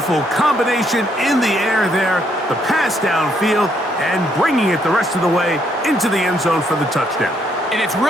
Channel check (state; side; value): normal; both; correlation 0.72